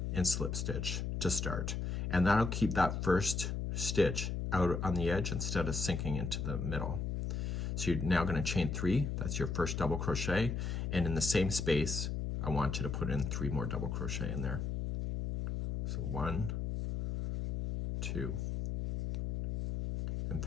and slip stitch to start. And that'll keep that first stitch out on the edge instead of sinking into the middle. So you're now going to chain 3. That's your first double crochet. And in the same space, I want you to put in 3 more double crochet in there. So 1, 2, and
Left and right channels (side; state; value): left; noise; hum, 1 dB below the sound